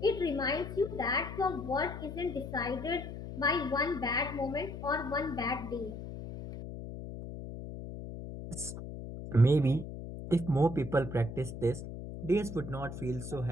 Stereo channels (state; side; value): noise; left; hum, 9 dB below the sound